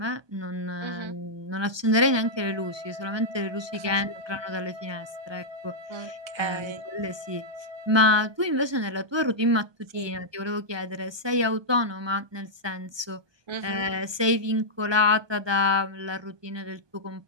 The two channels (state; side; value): late; left; 1.2 ms